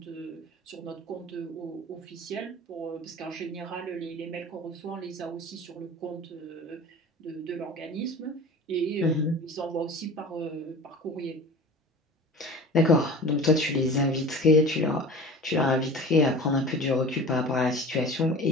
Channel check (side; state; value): both; normal; correlation 0.38